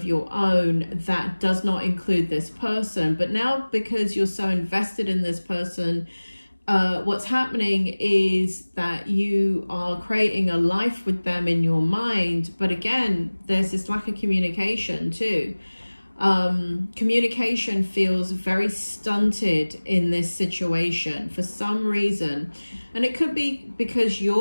your own that does not include this person. But now, because you're so invested in this person, what's happening is that you are creating a life with them in your mind. But again, there's this lack of communication too. Communication feels very stunted in this situation for some reason. And it could be because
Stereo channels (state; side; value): inverted; both; correlation -1.00